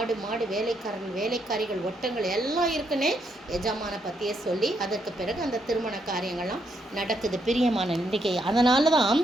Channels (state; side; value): normal; both; correlation 0.77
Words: மாடு, வேலைக்காரிகள், ஒட்டங்கள் எல்லாம் இருக்குன்னே எஜமானை பற்றியே சொல்லி அதற்கு பிறகு அந்த திருமண காரியங்கள்லாம் நடக்குது. பிரியமான நம்பிக்கை. அதனால தான்